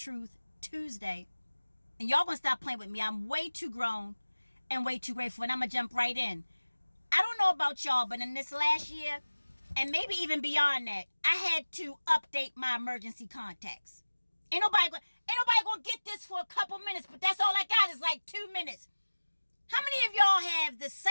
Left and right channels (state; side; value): inverted; both; correlation -1.00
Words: Tuesday. And y'all gonna stop playing with me. I'm way too grown and way too grateful. And I'm gonna jump right in. I don't know about y'all, but in this last year, and maybe even beyond that, I had to update my emergency contacts. Ain't nobody gonna get this for a couple minutes, but that's all I got is like 2 minutes. How many of y'all have the